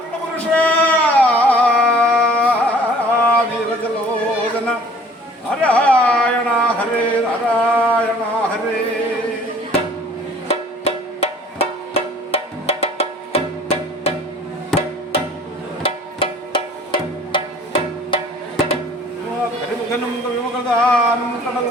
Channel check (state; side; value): normal; both; correlation 0.52